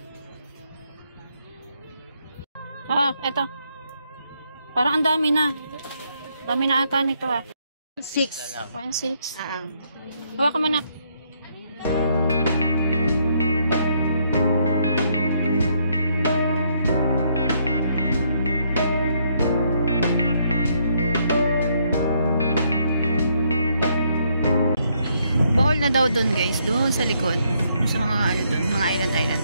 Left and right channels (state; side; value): inverted; both; correlation -0.73